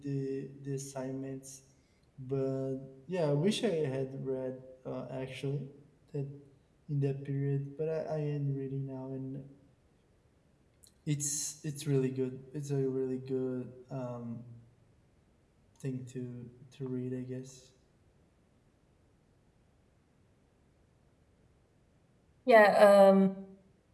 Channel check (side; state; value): both; identical; correlation 1.00